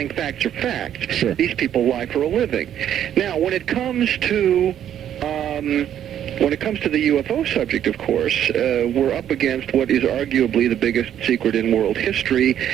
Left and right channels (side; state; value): left; quieter; 10.3 dB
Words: facts are facts. Sure. These people lie for a living. Now, when it comes to the UFO subject, of course, we're up against what is arguably the biggest secret in world history,